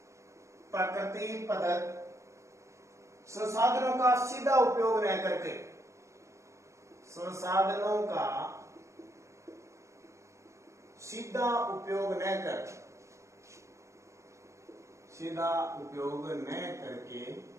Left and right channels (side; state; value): left; late; 0.14 ms